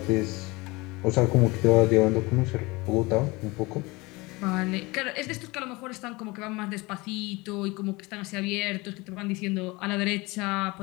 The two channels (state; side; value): quieter; right; 23.7 dB